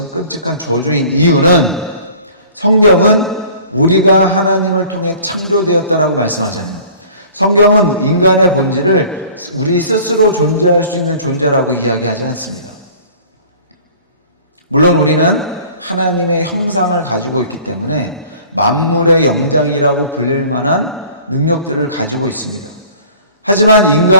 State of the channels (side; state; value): both; inverted; correlation -0.48